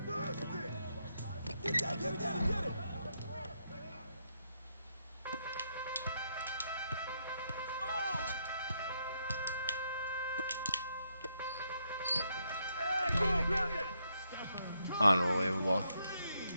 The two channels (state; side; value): inverted; both; correlation -0.78